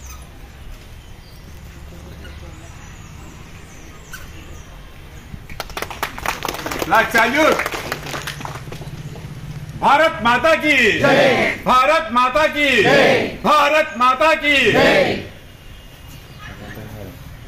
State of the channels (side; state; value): both; identical; correlation 1.00